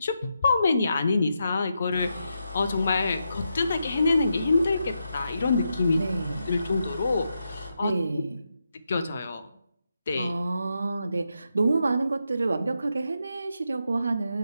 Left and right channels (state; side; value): inverted; both; correlation -0.84